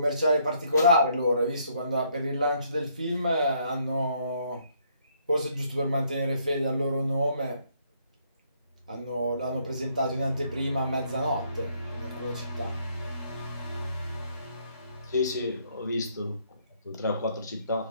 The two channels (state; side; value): inverted; both; correlation -0.68